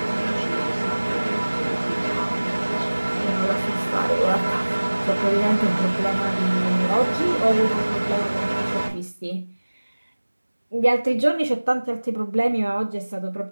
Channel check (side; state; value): both; inverted; correlation -1.00